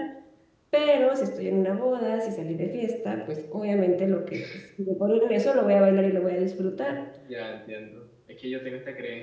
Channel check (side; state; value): both; identical; correlation 1.00